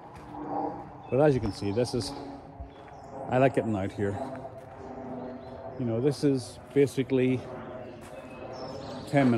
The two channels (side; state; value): both; identical; correlation 1.00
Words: But as you can see, I like getting out here. You know, this is basically 10